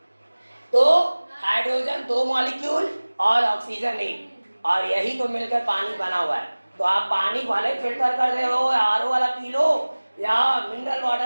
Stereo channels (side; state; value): both; inverted; correlation -1.00